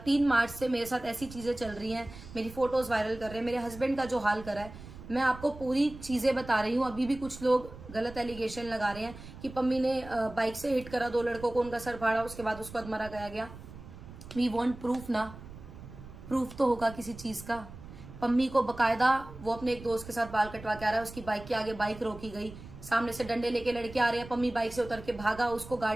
मार्च से मेरे साथ ऐसी चीजें चल रही हैं, मेरी फोटोज वायरल कर रहे हैं, मेरे हस्बैंड का जो हाल करा है, मैं आपको पूरी चीजें बता रही हूँ। अभी भी कुछ लोग गलत एलिगेशन लगा रहे हैं कि पम्मी ने बाइक से हिट करा 2 लड़कों को, उनका सर फाड़ा, उसके बाद उसको अधमरा गया गया। वी वांट प्रूफ ना, प्रूफ तो होगा किसी चीज का। पम्मी को बकायदा वो अपने एक दोस्त के साथ बाल कटवा के आ रहा है, उसकी बाइक के आगे बाइक रोकी गई, सामने से डंडे लेके लड़के आ रहे हैं, पम्मी बाइक से उतर के भागा, उसको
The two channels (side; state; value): right; noise; rumble, 15 dB below the sound